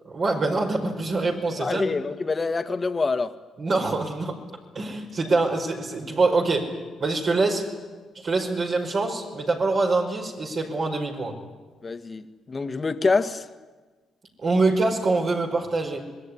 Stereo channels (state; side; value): normal; both; correlation 0.89